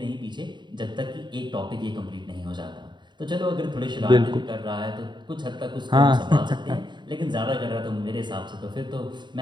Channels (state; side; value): late; left; 0.22 ms